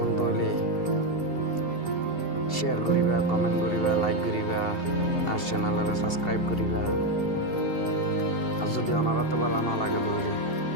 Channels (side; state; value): right; late; 2.7 ms